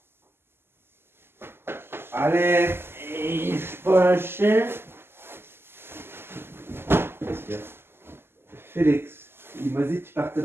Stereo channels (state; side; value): late; left; 0.12 ms